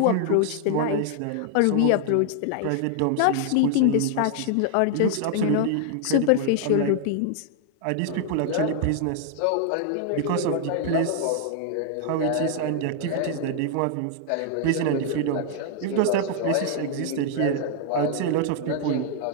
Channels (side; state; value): both; different; correlation 0.00